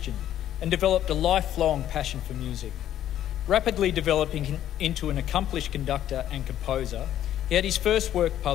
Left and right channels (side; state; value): right; quieter; 11.6 dB